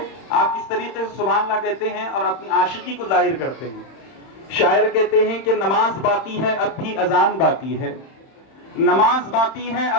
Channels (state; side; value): late; right; 31 ms